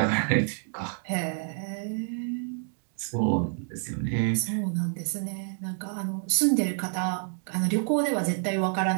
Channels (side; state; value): left; silent; 55 dB below the other